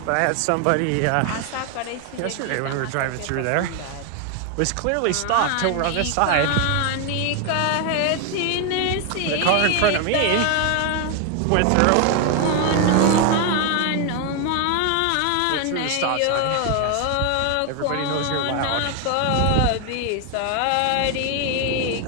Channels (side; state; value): both; different; correlation 0.01